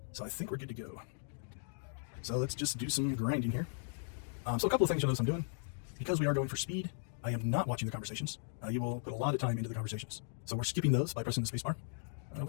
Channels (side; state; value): right; silent; digital silence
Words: So I think we're good to go. So let's just do some grinding here. So a couple of things you'll notice I'm doing. Because we are going for speed, I am not watching the conversations. You will put a lot of time into the conversations. So we're skipping those by pressing the spacebar.